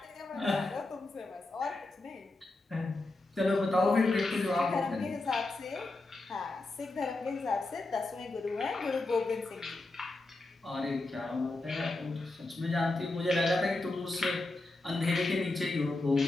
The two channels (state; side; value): quieter; right; 3.0 dB